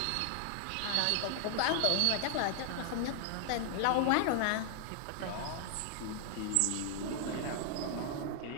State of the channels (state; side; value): different; both; correlation 0.00